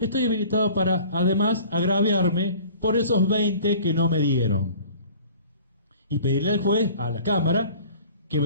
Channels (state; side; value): inverted; both; correlation -0.47